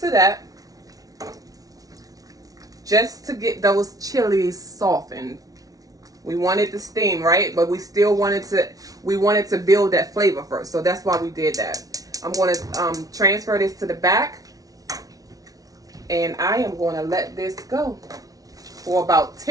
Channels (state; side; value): late; left; 0.18 ms